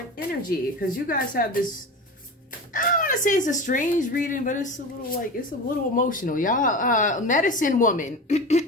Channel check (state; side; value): normal; both; correlation 0.29